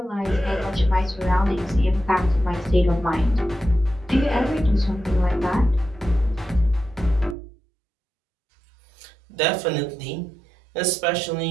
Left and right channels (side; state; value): left; drops out; at 7.4 s